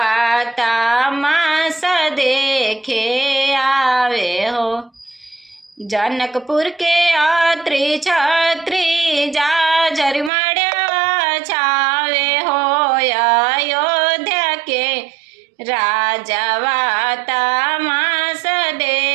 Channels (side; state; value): left; drops out; at 10.3 s